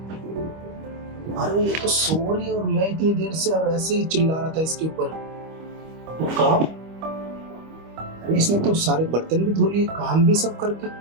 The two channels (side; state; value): left; late; 25 ms